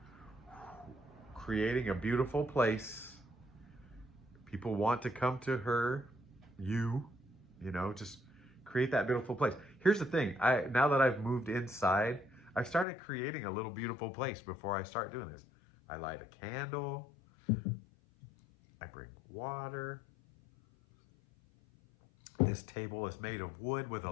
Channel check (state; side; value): drops out; right; at 12.9 s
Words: creating a beautiful place. People want to come to her, you know, just create that beautiful place. Here's the thing. Now that I've moved inside, I've started creating a little beautiful place before I start doing this. I light a candle. I bring water. This table is made of wood with a